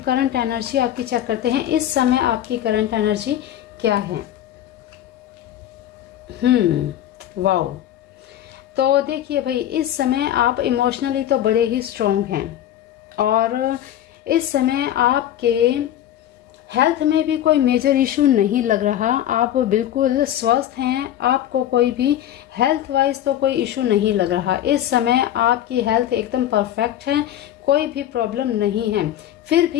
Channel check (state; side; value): quieter; right; 11.7 dB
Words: एनर्जी आपकी चेक करते हैं। इस समय आपकी करंट एनर्जी क्या है। वाओ। तो देखिए भाई, इस समय आप इमोशनली तो बड़े ही स्ट्रोंग हैं और इस समय आपके हेल्थ में भी कोई मेजर इशू नहीं लग रहा, आप बिल्कुल स्वस्थ हैं, आपको कोई भी हेल्थ वाइज तो कोई इशू नहीं लग रहा। इस समय आपकी हेल्थ एकदम परफेक्ट है, कोई भी प्रॉब्लम नहीं है। फिर